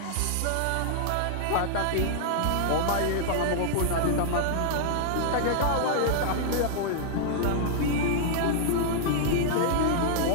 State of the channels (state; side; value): different; both; correlation -0.01